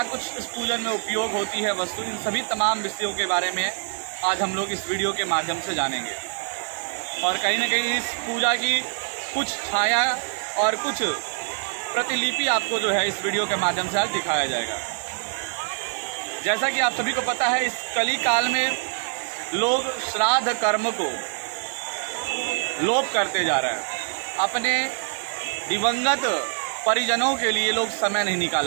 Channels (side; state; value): left; silent; digital silence